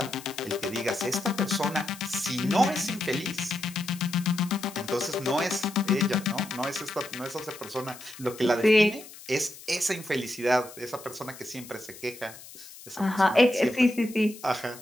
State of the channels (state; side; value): noise; left; hiss, 17 dB below the sound